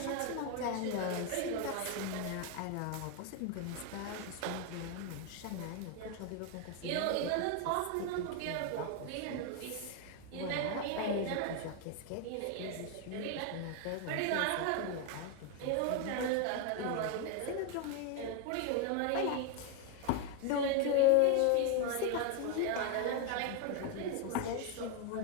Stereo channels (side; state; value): both; different; correlation 0.01